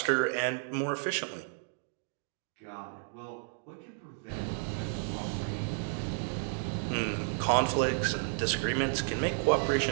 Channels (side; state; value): left; silent; digital silence